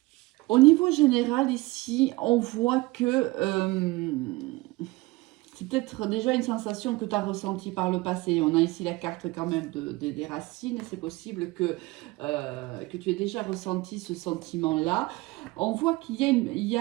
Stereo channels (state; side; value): quieter; left; 21.4 dB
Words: Au niveau général, ici, on voit que c'est peut-être déjà une sensation que tu as ressentie par le passé. On a ici la carte quand même des racines. C'est possible que tu aies déjà ressenti ce sentiment-là. on voit qu'il y